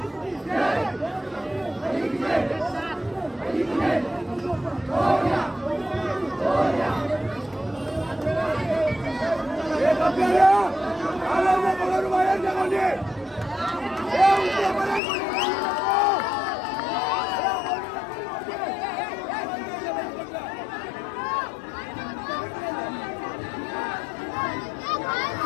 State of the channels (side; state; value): right; drops out; at 15.0 s